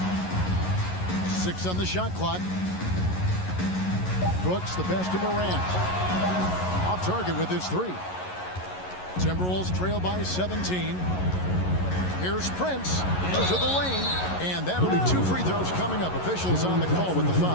6 on the shot clock. Brooks, the pass to Morant. Off target with his 3. Timberwolves trail by 17. Here's Prince into the lane. And that'll be 2 free throws coming up. Officials on the call with the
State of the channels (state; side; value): late; right; 11 ms